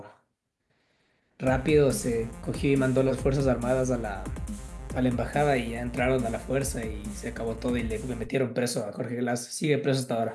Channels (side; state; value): both; identical; correlation 1.00